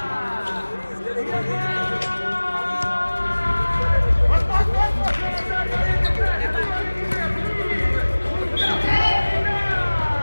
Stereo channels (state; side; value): inverted; both; correlation -1.00